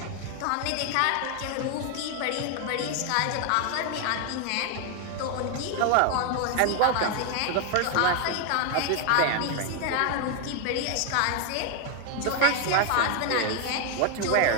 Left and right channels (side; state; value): both; different; correlation 0.01